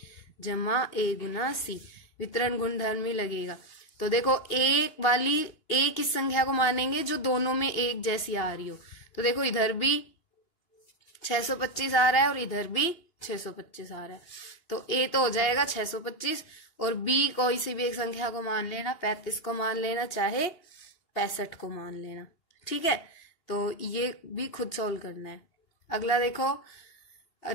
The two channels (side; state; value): right; late; 2.8 ms